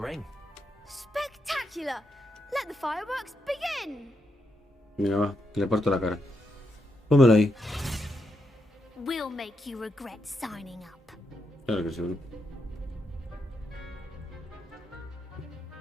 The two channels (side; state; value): both; normal; correlation 0.82